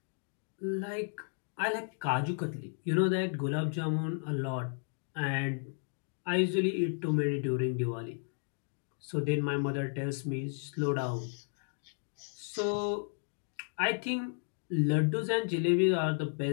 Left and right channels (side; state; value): right; silent; digital silence